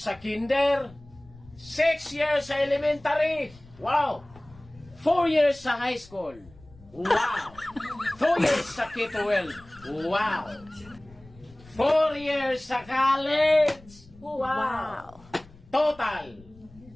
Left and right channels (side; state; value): left; noise; rumble, 24 dB below the sound